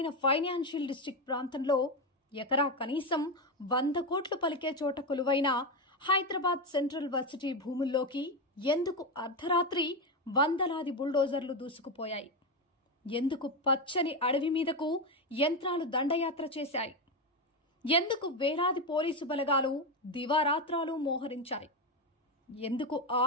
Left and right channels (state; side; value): normal; both; correlation 0.11